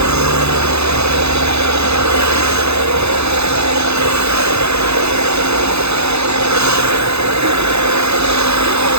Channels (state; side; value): late; left; 0.80 ms